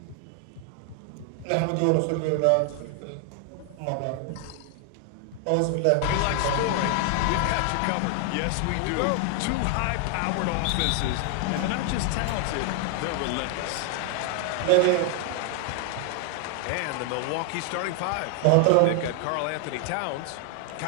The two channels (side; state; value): both; different; correlation 0.00